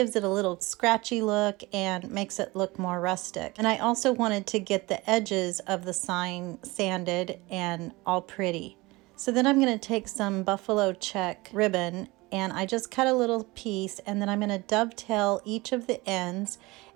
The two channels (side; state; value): left; quieter; 22.3 dB